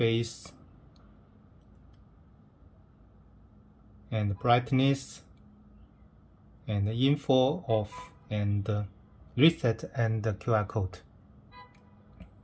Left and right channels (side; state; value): both; identical; correlation 1.00